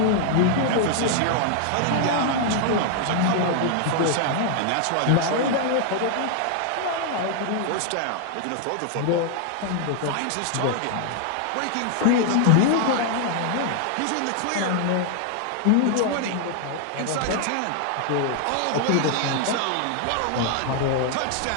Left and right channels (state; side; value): different; both; correlation 0.00